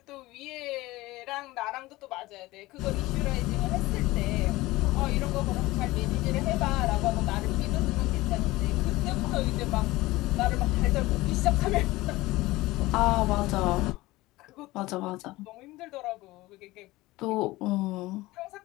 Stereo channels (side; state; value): right; quieter; 19.3 dB